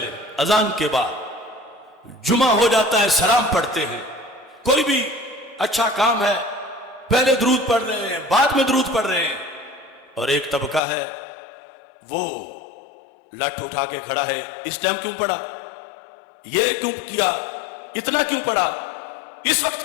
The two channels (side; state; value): right; drops out; at 10.8 s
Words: اذان کے بعد، جمعہ ہو جاتا ہے سلام پڑھتے ہیں، کوئی بھی اچھا کام ہے پہلے درود پڑھ رہے ہیں بعد میں درود پڑھ رہے ہیں، اور ایک طبقہ ہے وہ لٹ اٹھا کے کھڑا ہے، اس ٹائم کیوں پڑھا، یہ کیوں کیا، اتنا کیوں پڑھا، اس